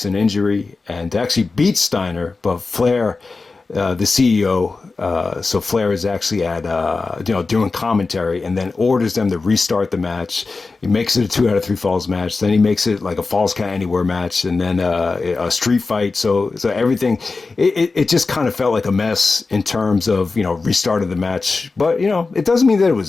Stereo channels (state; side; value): quieter; right; 4.0 dB